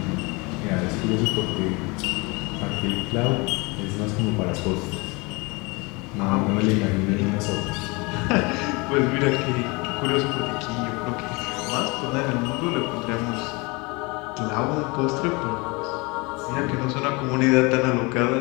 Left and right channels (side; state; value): right; quieter; 26.9 dB